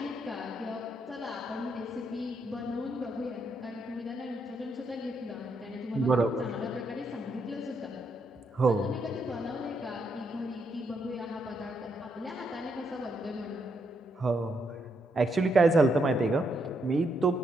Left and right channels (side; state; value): both; normal; correlation 0.78